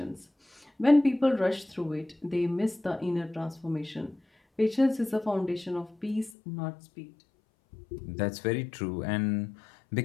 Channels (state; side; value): drops out; right; at 6.3 s